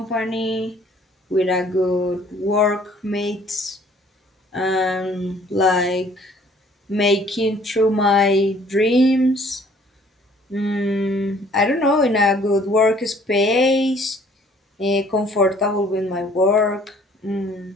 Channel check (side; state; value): both; normal; correlation 0.58